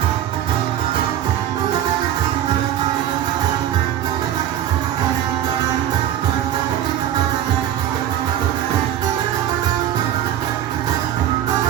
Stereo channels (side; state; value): left; quieter; 11.2 dB